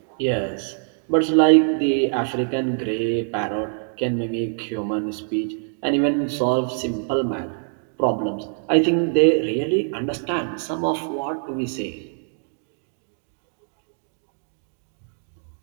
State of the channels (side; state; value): left; silent; 59 dB below the other